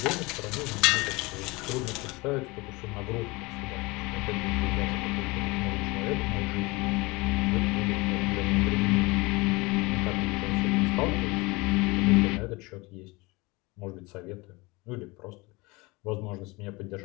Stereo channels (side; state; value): right; quieter; 24.3 dB